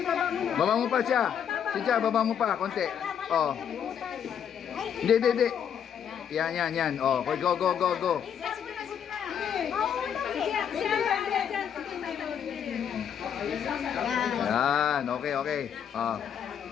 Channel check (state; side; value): quieter; right; 8.4 dB